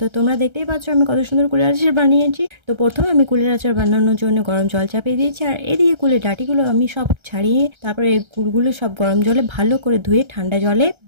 তো তোমরা দেখতেই পাচ্ছ আমি কত সুন্দর কুলের আচার বানিয়েছি। তো প্রথমে আমি কুলের আচার বানানোর জন্য গরম জল চাপিয়ে দিয়েছি, আর এদিকে কুলের ডাঁটিগুলো আমি সব ছাড়িয়ে তারপরে এই কুলগুলো সব গরম জলে ভালো করে ধুয়ে ঠান্ডা জলে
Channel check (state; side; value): late; left; 1.3 ms